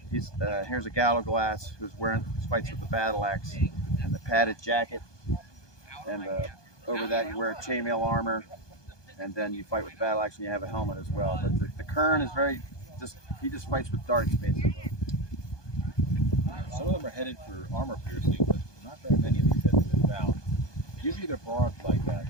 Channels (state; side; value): late; right; 1.2 ms